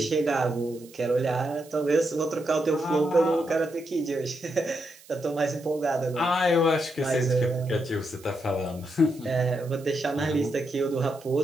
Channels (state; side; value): noise; right; hiss, 23 dB below the sound